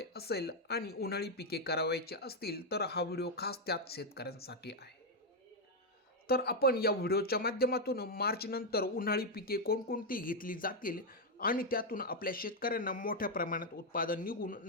असेल आणि उन्हाळी पिके करावायची असतील तर हा व्हिडिओ खास त्याच शेतकऱ्यांसाठी आहे. तर आपण या व्हिडिओच्या माध्यमातून मार्च नंतर उन्हाळी पिके कोणकोणती घेतली जातील आणि त्यातून आपल्या शेतकऱ्यांना मोठ्या प्रमाणात उत्पादन निघून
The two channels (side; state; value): both; normal; correlation 0.02